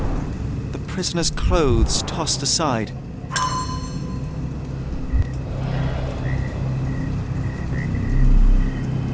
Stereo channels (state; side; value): identical; both; correlation 1.00